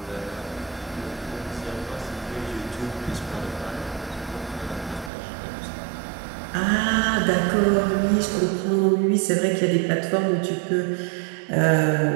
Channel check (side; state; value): left; drops out; at 5.1 s